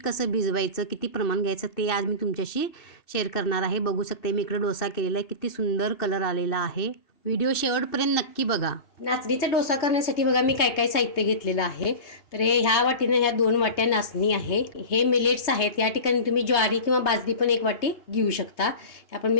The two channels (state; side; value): late; right; 3.2 ms